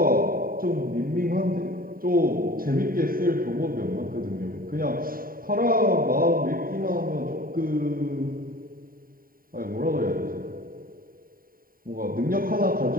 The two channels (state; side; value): late; left; 0.42 ms